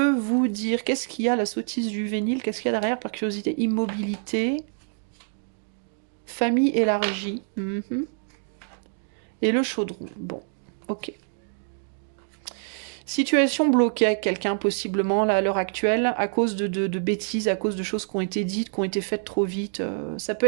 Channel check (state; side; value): silent; left; 61 dB below the other